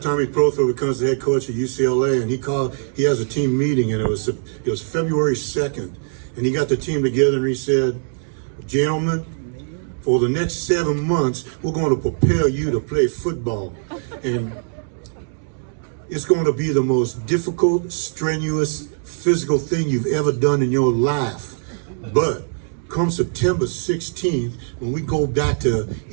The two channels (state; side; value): silent; left; digital silence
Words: Tommy Prothro becomes the head coach at UCLA, and he has a team meeting, and it was February 2nd, and he got the team together, and he said, gentlemen, for the next 7 months, we're going to prepare you to play football, and it's going to be the most difficult, strenuous, physical thing you've ever done in your life. But come September 16th, when we go back to